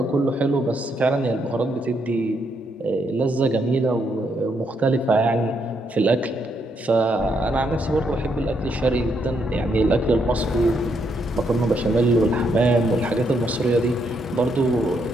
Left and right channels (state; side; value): normal; both; correlation 0.76